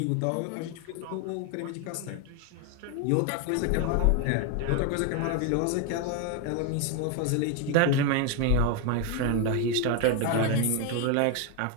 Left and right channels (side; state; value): both; different; correlation 0.01